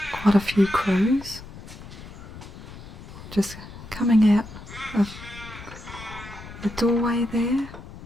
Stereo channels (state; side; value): noise; left; rumble, 15 dB below the sound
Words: quite a few crows just coming out of the doorway there